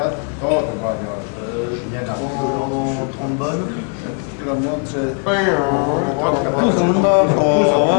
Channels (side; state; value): right; quieter; 37.8 dB